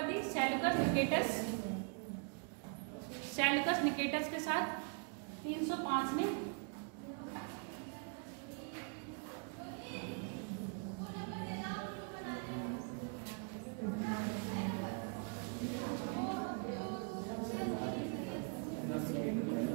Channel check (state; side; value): quieter; left; 39.4 dB